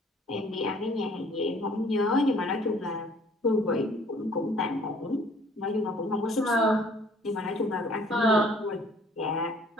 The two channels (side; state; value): both; normal; correlation 0.57